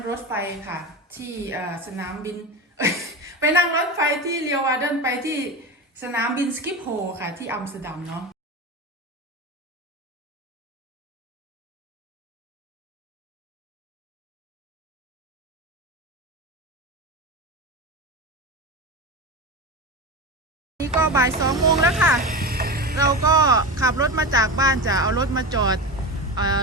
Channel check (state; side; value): normal; both; correlation 0.23